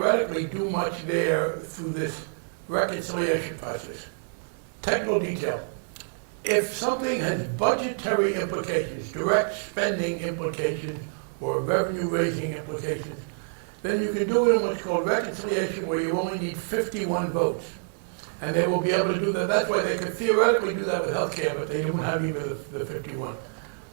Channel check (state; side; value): silent; left; digital silence